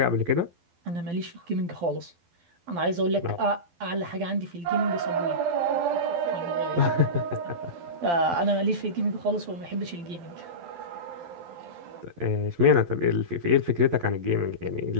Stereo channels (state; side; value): late; left; 12 ms